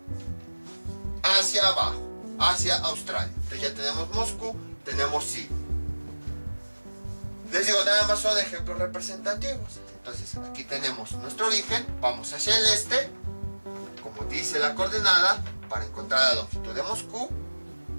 hacia abajo, hacia Australia. Entonces ya tenemos Moscú, tenemos Sydney. Les digo, nada más son ejemplos representativos. Entonces aquí tenemos nuestro origen, vamos hacia el este, como dice la coordenada, para encontrar la longitud de Moscú,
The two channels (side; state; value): both; inverted; correlation -1.00